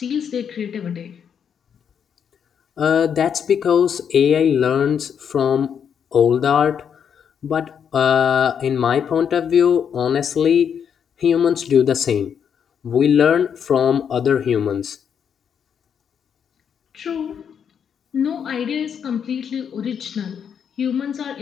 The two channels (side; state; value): right; quieter; 7.7 dB